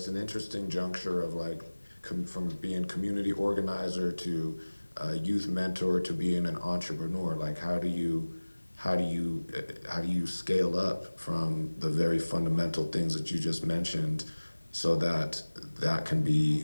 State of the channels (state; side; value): inverted; both; correlation -1.00